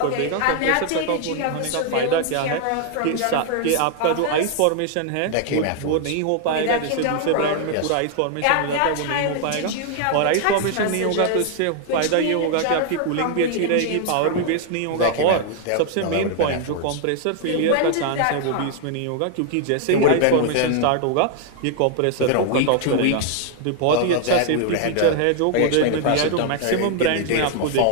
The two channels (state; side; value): different; both; correlation 0.00